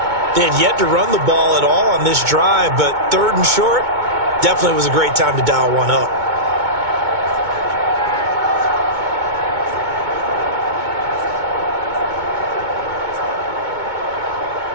They had yet to run the ball at all on this drive, but 3rd and short definitely was a great time to dial one up.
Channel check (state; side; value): late; left; 2.2 ms